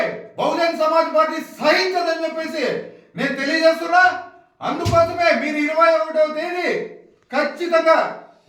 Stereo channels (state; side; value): identical; both; correlation 1.00